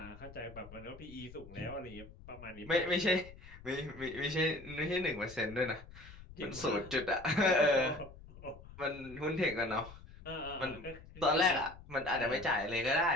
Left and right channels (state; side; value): noise; left; rumble, 17 dB below the sound